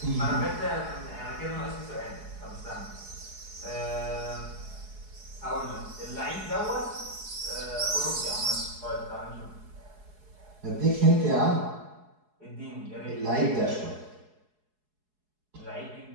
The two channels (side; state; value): left; late; 4.7 ms